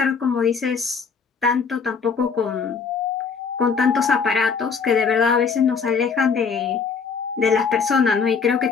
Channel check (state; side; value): quieter; right; 5.7 dB